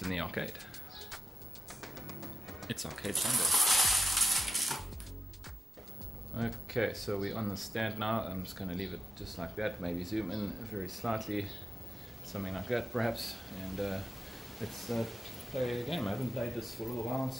in the arcade. It's Arcade Sunday. Okay, so we're on the stand now. I'm just gonna leave it just like that, maybe zoom in very slightly, something like that perhaps, and let's play a game. I haven't played this for a little while,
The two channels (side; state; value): both; normal; correlation 0.90